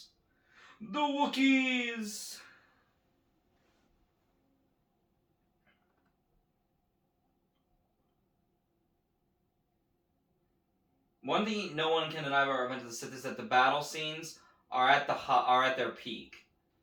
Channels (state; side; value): identical; both; correlation 1.00